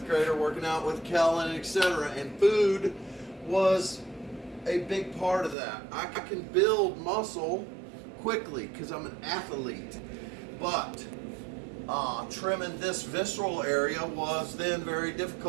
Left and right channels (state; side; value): drops out; left; at 5.6 s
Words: grader working out with Kellen, etc. And food was a big part of that. I can build muscle quickly because I'm an athlete, but trimming this visceral area was then very